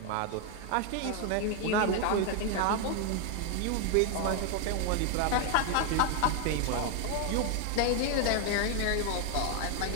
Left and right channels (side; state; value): both; different; correlation 0.00